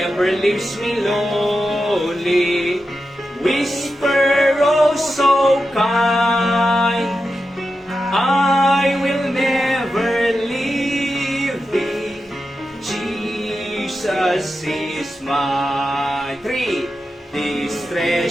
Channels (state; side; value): normal; both; correlation 0.90